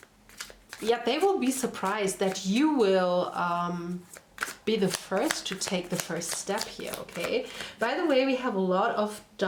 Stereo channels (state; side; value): identical; both; correlation 1.00